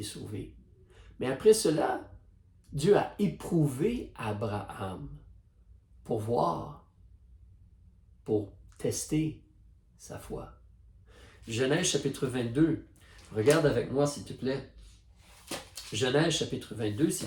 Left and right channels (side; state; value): both; identical; correlation 1.00